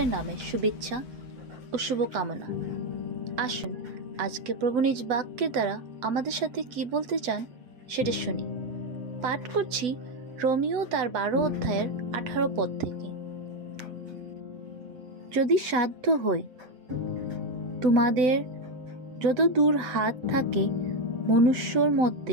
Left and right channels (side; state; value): left; late; 8.1 ms